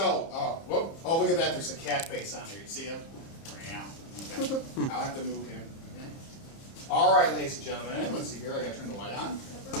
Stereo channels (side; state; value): right; late; 30 ms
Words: whoop. Oh, look at that. There's a cat face on here. You see him? Yeah. Okay. I'll have to move him. Okay. All right, ladies and gentlemen. Let's see here. I got to turn the light on.